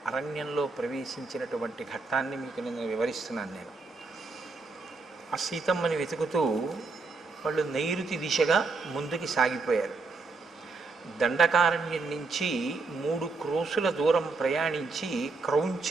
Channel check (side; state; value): left; quieter; 4.0 dB